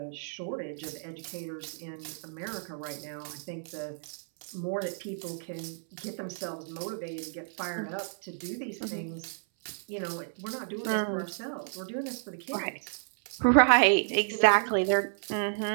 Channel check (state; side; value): silent; left; 57 dB below the other